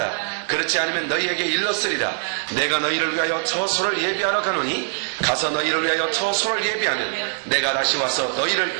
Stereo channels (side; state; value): left; silent; digital silence